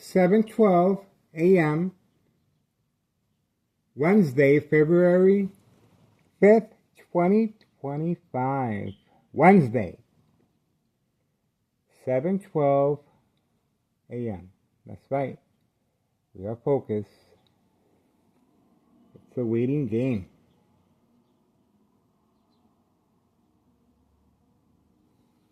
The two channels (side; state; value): both; identical; correlation 1.00